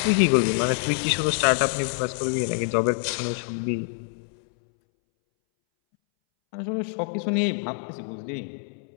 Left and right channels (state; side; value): silent; right; 61 dB below the other